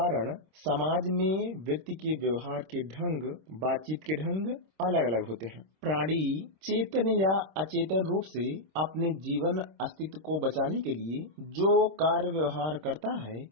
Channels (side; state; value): left; late; 26 ms